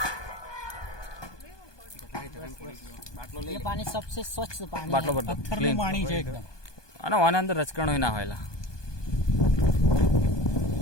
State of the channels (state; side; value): late; right; 1.2 ms